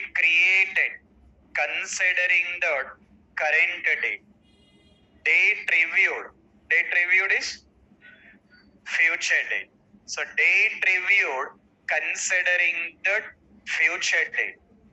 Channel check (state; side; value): identical; both; correlation 1.00